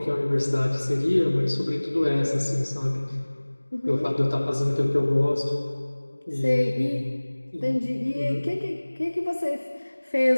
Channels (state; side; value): inverted; both; correlation -1.00